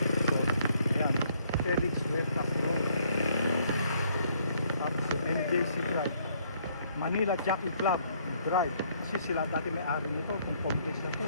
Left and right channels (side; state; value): both; inverted; correlation -0.67